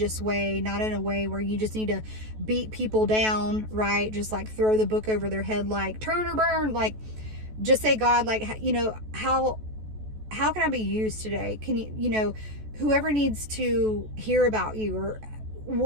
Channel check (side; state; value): left; late; 14 ms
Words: way, not in a way where you just need to beat people down, right? Just like throw the book over their head, like turn or burn, like just say, God, like, you know, how can I be used today? Can you, whoever needs to hear about you, or